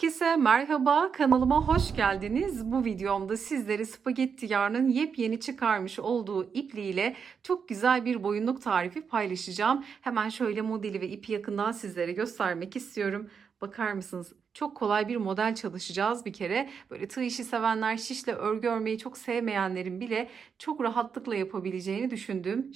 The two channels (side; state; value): left; quieter; 6.4 dB